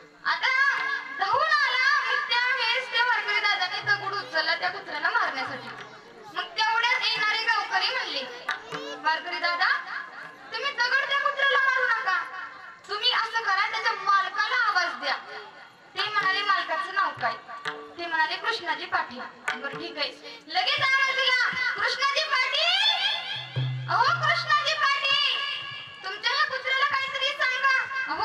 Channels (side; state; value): both; identical; correlation 1.00